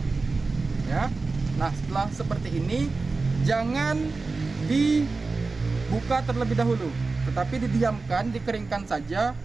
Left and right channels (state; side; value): quieter; left; 3.9 dB